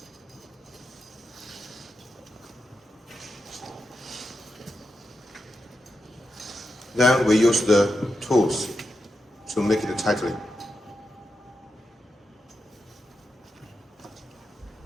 Then we use the tools to make it tightly.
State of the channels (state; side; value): normal; both; correlation 0.87